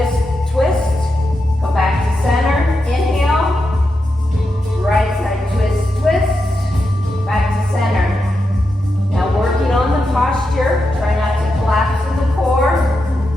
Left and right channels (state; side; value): normal; both; correlation 0.87